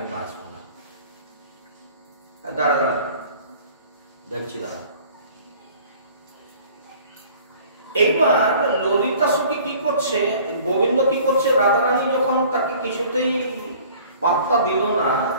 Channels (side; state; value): both; inverted; correlation -0.50